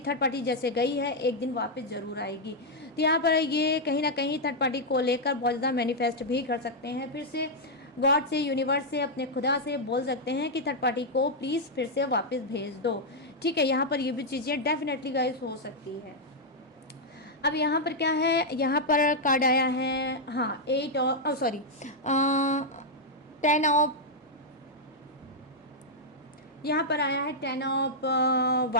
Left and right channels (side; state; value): both; normal; correlation -0.04